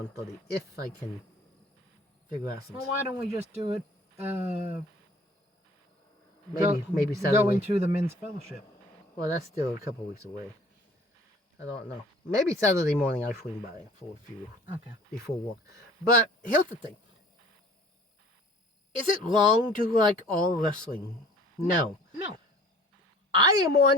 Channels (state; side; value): normal; both; correlation 0.50